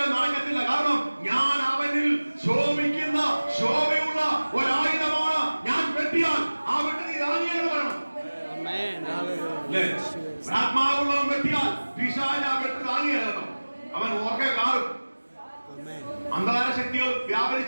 നടക്കത്തില്ല. കാരണം ഞാൻ അവനിൽ ശോഭിക്കുന്ന ശോഭയുള്ള ഒരായുധമാണ്. ഞാൻ വെട്ടിയാൽ ആ വെട്ടി നീ താങ്ങിയെന്ന് പറയണം. ആത്മാവുള്ളവൻ വെട്ടിയാൽ പിശാച് ആ വെട്ടി താങ്ങിയെന്ന് അവൻ ഓർക്കെ കാറും. അന്ധകാര ശക്തികൾ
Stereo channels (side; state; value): both; inverted; correlation -1.00